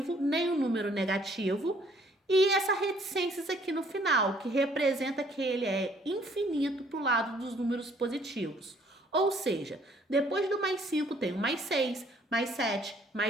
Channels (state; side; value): normal; both; correlation 0.61